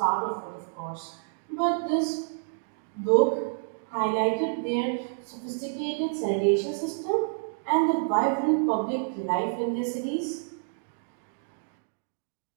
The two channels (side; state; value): left; silent; digital silence